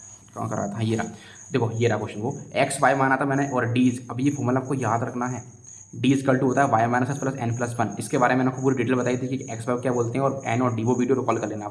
कहाँ कर रहा था, ये रहा, देखो ये रहा क्वेश्चन, वो XY माना था मैंने और D, अब ये फॉर्मूला आपको याद रखना है, D = होता है y - s + n+1। इसके बारे में मैंने आपको पूरी डिटेल बताई थी कि XY क्या बोलते हैं और N और D, वो वीडियो रिकॉल कर लेना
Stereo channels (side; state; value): both; identical; correlation 1.00